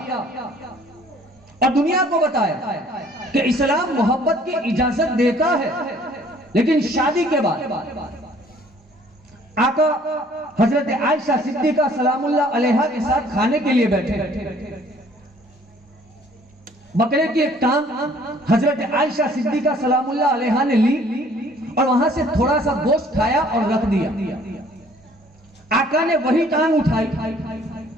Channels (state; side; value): normal; both; correlation 0.57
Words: और दुनिया को बताया कि इस्लाम मोहब्बत की इजाजत देता है, लेकिन शादी के बाद आका हजरत आयशा सिद्दीका सलामुल्लाह अलैहा के साथ खाने के लिए बैठे। बकरे की एक टांग हजरत आयशा सिद्दीका सलामुल्लाह अलैहा ने ली और वहां से थोड़ा सा गोश्त खाया और रख दिया। आका ने वही टांग उठाई